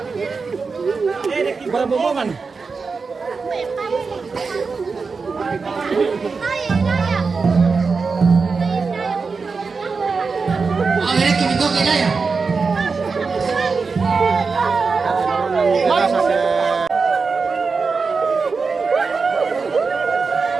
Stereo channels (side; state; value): left; quieter; 4.7 dB